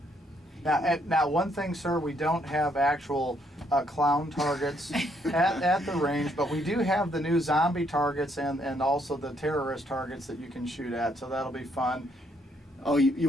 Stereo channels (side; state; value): both; normal; correlation 0.71